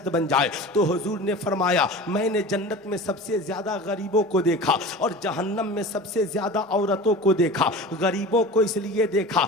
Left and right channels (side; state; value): both; normal; correlation 0.35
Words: बन जाए। तो हुजूर ने फरमाया, मैंने जन्नत में सबसे ज्यादा गरीबों को देखा और जहन्नम में सबसे ज्यादा औरतों को देखा। गरीबों को इसलिए देखा